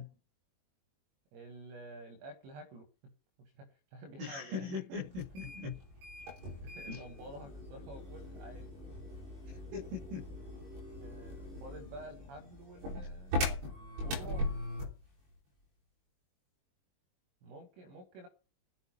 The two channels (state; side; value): late; left; 21 ms